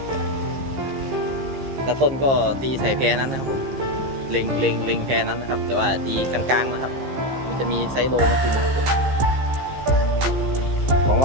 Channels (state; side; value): late; left; 15 ms